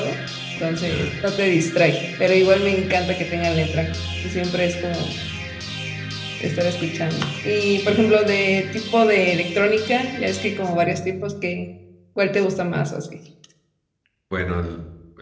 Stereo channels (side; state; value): both; identical; correlation 1.00